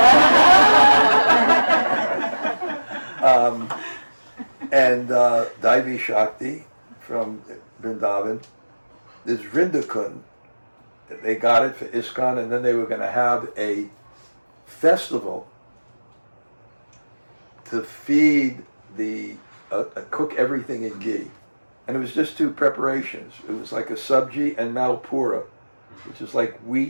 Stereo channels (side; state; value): both; inverted; correlation -1.00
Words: And Daivi Shakti from Vrindavan. There's Vrindakund. They got it for ISKCON, and then they were going to have a festival to feed cook everything in ghee. And it was just 2 preparations. It was like a sabji and malpura, which is like